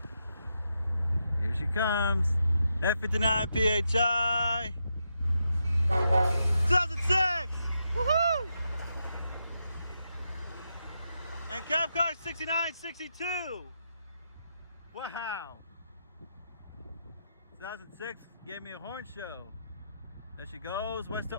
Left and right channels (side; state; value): both; inverted; correlation -0.83